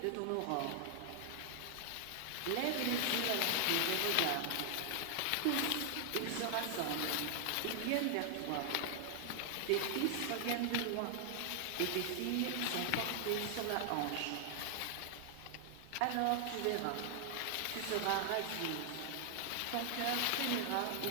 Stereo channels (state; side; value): different; both; correlation 0.00